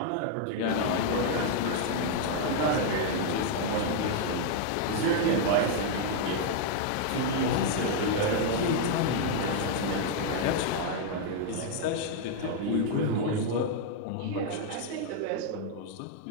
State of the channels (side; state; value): both; different; correlation 0.00